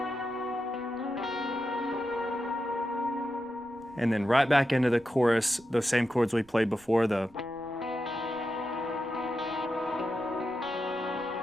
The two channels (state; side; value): noise; right; rumble, 27 dB below the sound